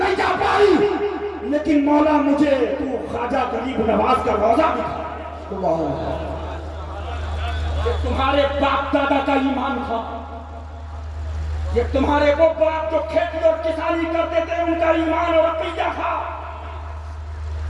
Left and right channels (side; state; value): both; identical; correlation 1.00